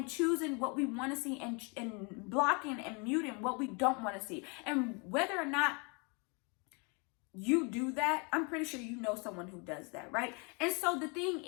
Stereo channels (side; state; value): right; quieter; 32.7 dB